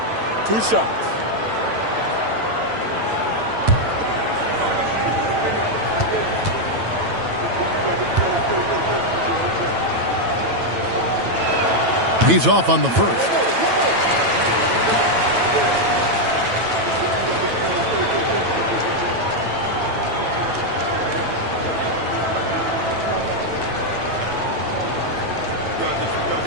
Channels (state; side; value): late; left; 9.0 ms